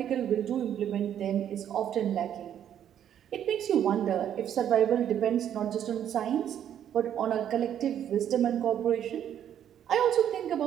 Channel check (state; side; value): quieter; left; 9.9 dB